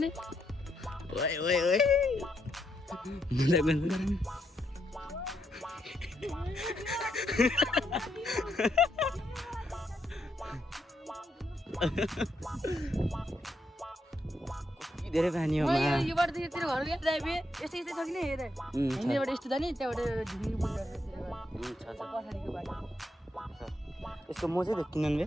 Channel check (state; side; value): normal; both; correlation 0.79